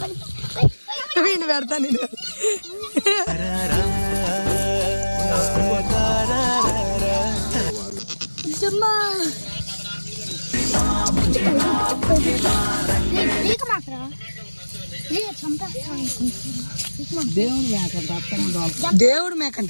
నేను పెడతా. నేను దేవుడు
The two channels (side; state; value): both; inverted; correlation -1.00